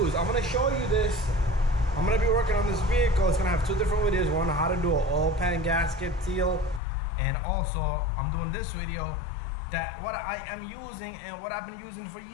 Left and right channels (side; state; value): right; drops out; at 6.8 s